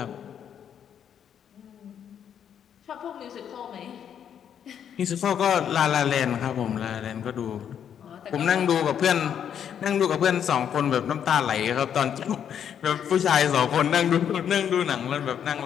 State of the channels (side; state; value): right; quieter; 8.7 dB